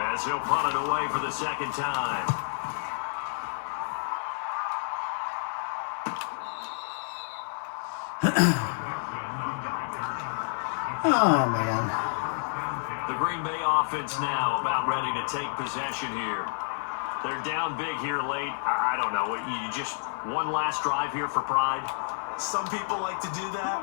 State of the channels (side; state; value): right; silent; digital silence